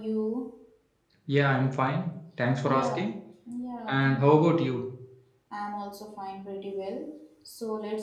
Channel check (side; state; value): both; identical; correlation 1.00